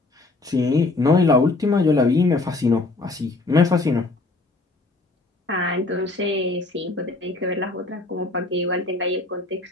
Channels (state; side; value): quieter; right; 3.2 dB